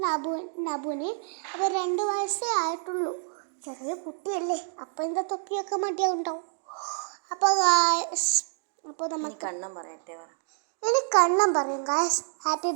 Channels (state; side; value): silent; left; digital silence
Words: നബുവിന്. അപ്പോൾ 2 വയസ്സേ ആയിട്ടുള്ളൂ. ചെറിയ കുട്ടിയല്ലേ, അപ്പോൾ എന്താ തൊപ്പിയൊക്കെ മടിയാവുണ്ടാവും. അപ്പോൾ നമുക്ക് കണ്ണം പറയട്ടെ. ഇനി കണ്ണം പറയും ഗായ്സ് ഹാപ്പി